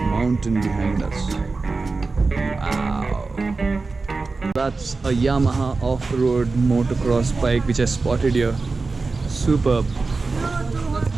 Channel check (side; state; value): left; quieter; 3.9 dB